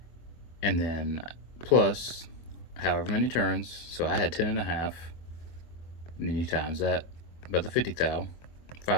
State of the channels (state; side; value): late; right; 24 ms